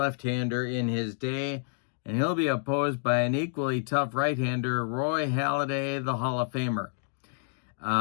in his day. And he'll be opposed by an equally tough right-hander, Roy Halladay, the Hall of Famer,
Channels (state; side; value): silent; right; digital silence